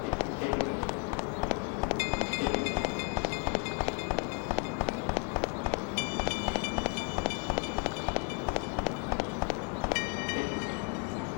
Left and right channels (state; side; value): quieter; right; 34.9 dB